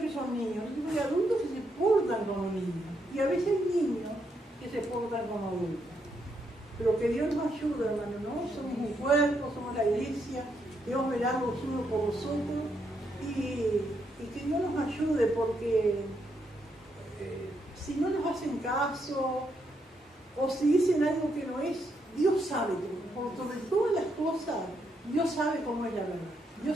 que son niños. Hay adultos que se portan como niños y a veces hay niños que se portan como adultos. Pero que Dios nos ayude, hermano, ¿no? Somos un cuerpo, somos la iglesia, Dios verá los unos por vosotros y que Dios nos ayude, porque si no nos hacen caso o si dicen algo que no es, Dios sabe todo. Por sobre todas las cosas, Dios sabe cómo es la verdad.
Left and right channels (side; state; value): both; normal; correlation 0.78